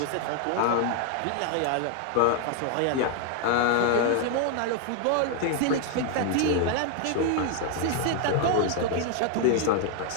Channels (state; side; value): different; both; correlation 0.00